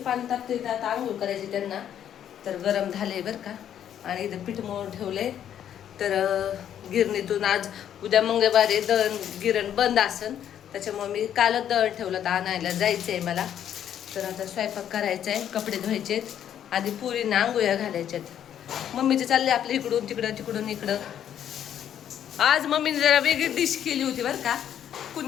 पाणी तापते, आता आंघोळ करायची त्यांना. तर गरम झाले बरं का. आणि इथं पीठ मळून ठेवले. तर गिरणीतून आज उद्या मंगळवारी दळण गिरण बंद असन, त्याच्यामुळे मी कालच दळण ठेवलं तर आणायला जायचं आहे मला. तर आता स्वयंपाक करायचा आहे, कपडे धुवायचे आहेत, आधी पुरींना आंघोळ्या घालायच्यात. मम्मीचे चालले आपलं इकडून तिकडं तिकडून इकडं. आज मम्मीने जरा वेगळी डिश केली होती बरं का.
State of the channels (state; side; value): quieter; right; 9.9 dB